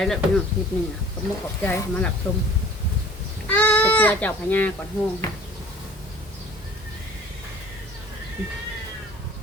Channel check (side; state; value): both; normal; correlation 0.47